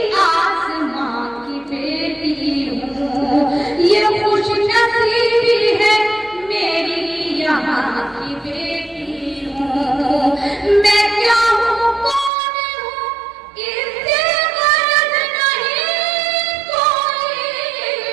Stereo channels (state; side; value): drops out; left; at 12.3 s